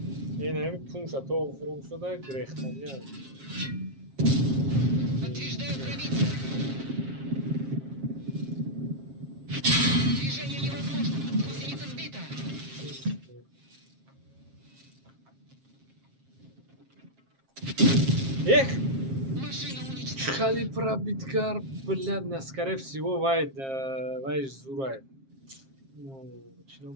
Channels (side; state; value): left; late; 7.5 ms